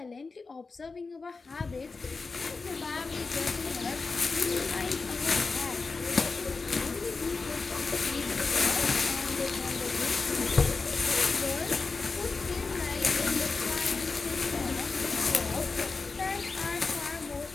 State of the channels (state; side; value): quieter; right; 4.2 dB